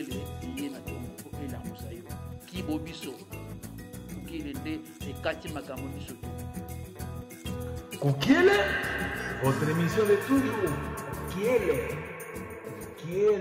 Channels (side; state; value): both; identical; correlation 1.00